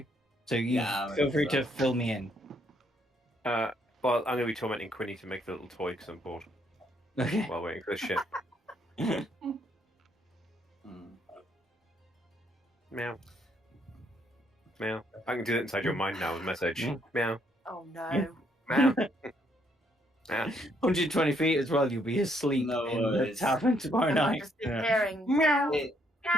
So feel free to fill me in. Well, I'm going to be tormenting Quinny to make the little toy because I'm bored. Okay. While waiting for the ship. Meow. Meow. I can do that inside your mind now with a message. Meow. Oh no. Meow. Meow. 120 feet as well, you'll be asleep No in the worries. tavern tomorrow And I'm night. just hearing meow,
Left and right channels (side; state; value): both; normal; correlation 0.71